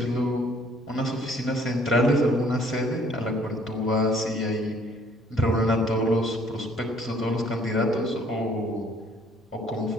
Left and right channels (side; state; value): both; normal; correlation 0.60